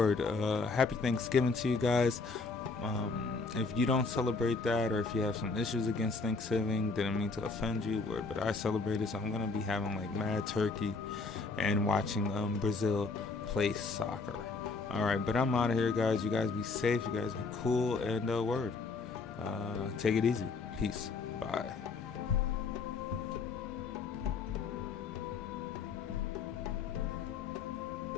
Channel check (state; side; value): quieter; right; 4.2 dB